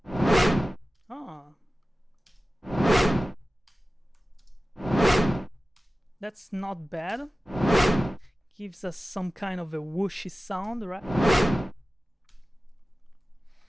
Ah. That's not bad. Gives us some kind of a whooshy sound, right?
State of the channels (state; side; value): normal; both; correlation 0.96